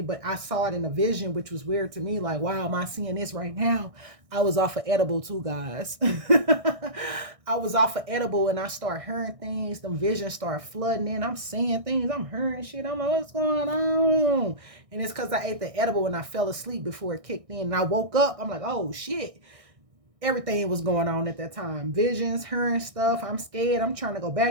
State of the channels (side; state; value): left; late; 1.6 ms